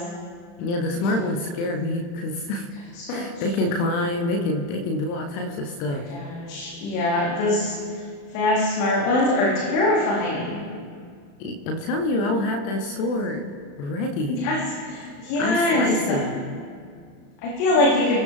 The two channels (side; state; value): right; late; 35 ms